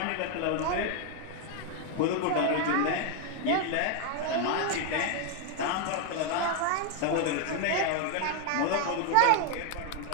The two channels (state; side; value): different; both; correlation 0.01